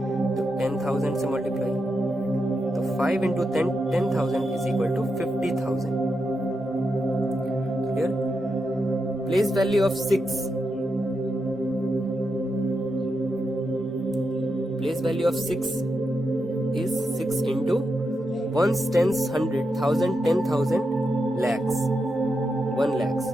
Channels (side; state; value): both; normal; correlation 0.86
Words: तो 10,000 से मल्टीप्लाई, तो 5 into 10,000 is equal to 50,000। Clear. Place value of 6, place value of 6 is 6 into ones, tens, 100, 1000, 10,000, lakhs, 1 lakhs।